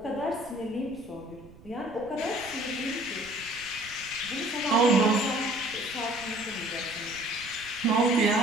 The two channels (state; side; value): noise; right; rumble, 21 dB below the sound